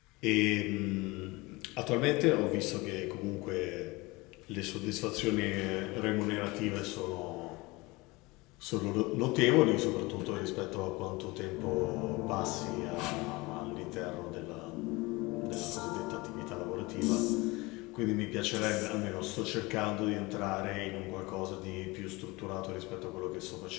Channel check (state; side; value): quieter; right; 23.3 dB